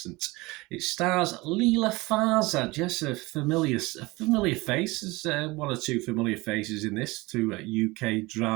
It stars Leela Farzad, yes, a familiar face. There's one or two familiar faces in this to UK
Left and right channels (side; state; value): left; quieter; 22.6 dB